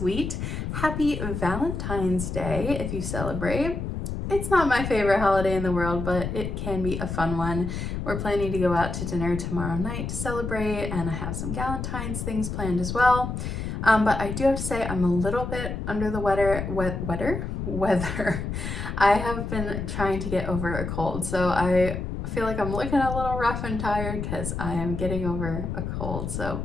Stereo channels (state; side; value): noise; left; rumble, 4 dB below the sound